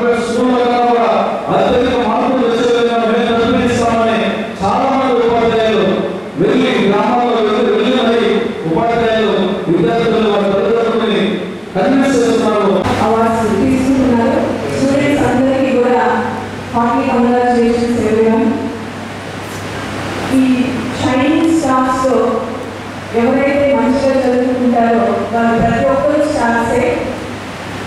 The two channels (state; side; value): identical; both; correlation 1.00